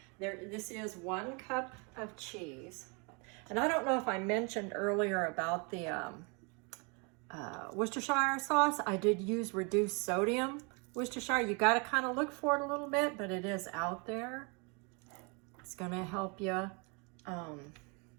This is 1 cup of cheese. And I don't know if I mentioned earlier about the Worcestershire sauce. I did use reduced sodium Worcestershire. You got to kind of look for it a little bit, but it is out there. It's going to help you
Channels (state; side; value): quieter; left; 32.6 dB